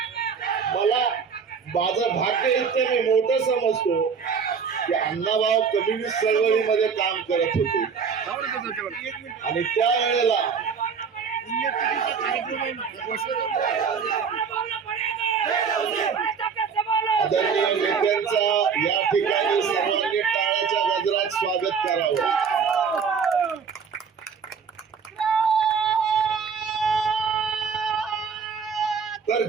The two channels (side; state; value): left; quieter; 6.1 dB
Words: मला माझं भाग्य इतकं मी मोठं समजतो की अण्णाभाऊ कम्युनिस्ट चळवळीमध्ये काम करत होते आणि त्यावेळेला आदरणीय नेत्यांचा या ठिकाणी सर्वांनी टाळ्याच्या गजरात स्वागत करावं. तर